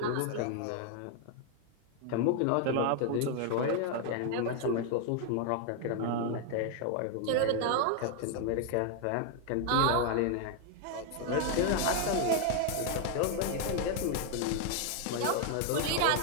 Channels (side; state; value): both; different; correlation 0.00